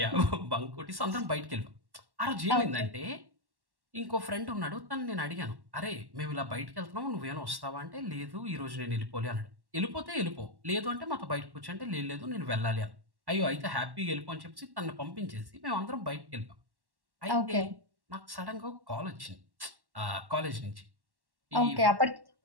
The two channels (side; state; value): left; late; 1.1 ms